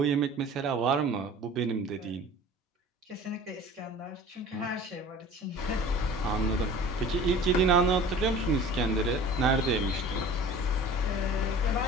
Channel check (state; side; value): normal; both; correlation 0.43